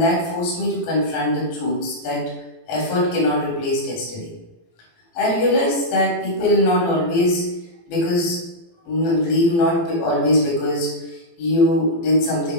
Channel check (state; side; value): late; right; 18 ms